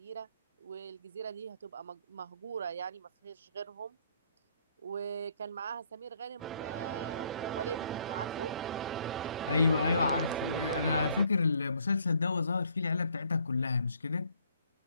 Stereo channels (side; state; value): both; inverted; correlation -0.66